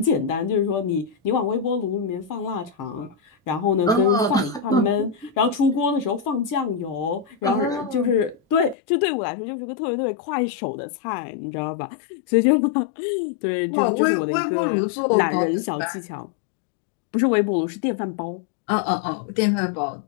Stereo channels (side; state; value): right; drops out; at 8.8 s